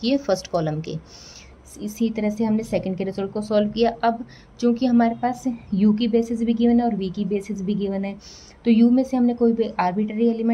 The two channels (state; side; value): identical; both; correlation 1.00